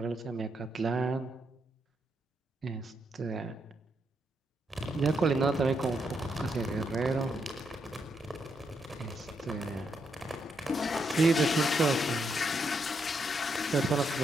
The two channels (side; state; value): both; normal; correlation 0.79